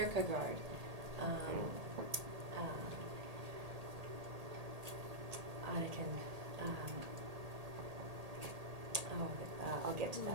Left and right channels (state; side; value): late; left; 1.8 ms